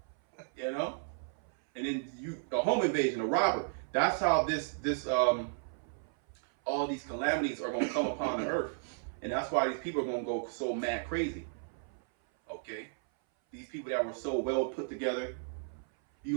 And then a home invasion, a robber. That's how all these calamities are going to come upon the earth. And that's why these people are going to go so mad crazy. Okay? These people that were so well put together, you're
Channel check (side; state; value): left; silent; 55 dB below the other